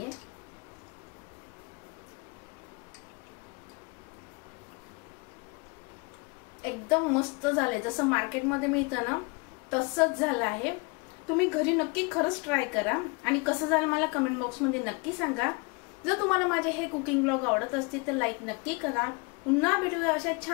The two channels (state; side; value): quieter; right; 29.6 dB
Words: एकदम मस्त झाले, जसं मार्केटमध्ये मिळतं ना तसंच झालं आहे। तुम्ही घरी नक्की खरंच ट्राय करा आणि कसं झालं मला कमेंट बॉक्स मध्ये नक्की सांगा। जर तुम्हाला माझे हे कुकिंग ब्लॉग आवडत असतील तर लाईक नक्की करा। पुन्हा भेटूया अशा